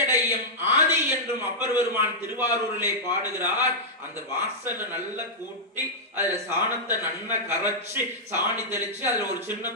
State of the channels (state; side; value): normal; both; correlation -0.09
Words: ஆதி என்றும் அப்பர் பெருமான் திருவாரூரிலே பாடுகிறார். அந்த வாசல்ல நல்லா கூட்டி அதுல சாணத்தை நன்னா கரைச்சு சாணி தெளிச்சு அதுல ஒரு சின்ன